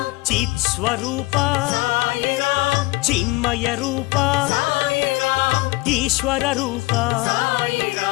చిత్స్వరూప సాయిరాం చిన్మయ రూప సాయిరాం ఈశ్వర రూప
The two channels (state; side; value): quieter; right; 22.0 dB